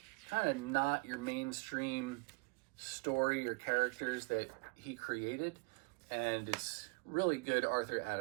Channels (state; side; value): quieter; left; 29.3 dB